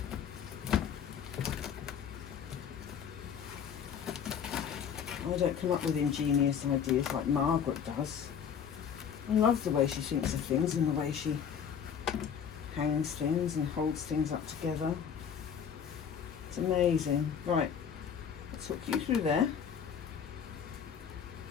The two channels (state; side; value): quieter; right; 7.7 dB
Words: I don't come up with ingenious ideas like Margaret does. I love the way she thinks of things and the way she hangs things and holds things up together. It's amazing. Right, let's hook you through there.